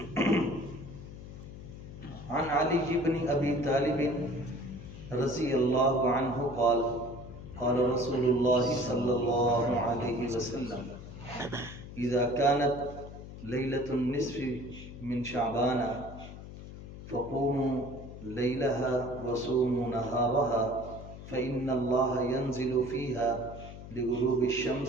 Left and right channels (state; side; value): noise; left; hum, 13 dB below the sound